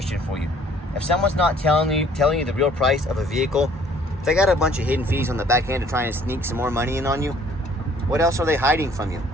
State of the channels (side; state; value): both; normal; correlation 0.57